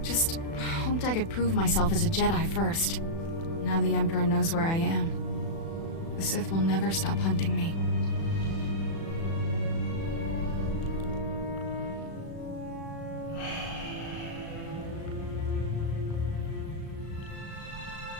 Just hoped I could prove myself as a Jedi first. Now the Emperor knows where I am. The Sith will never stop hunting me.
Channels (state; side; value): late; right; 36 ms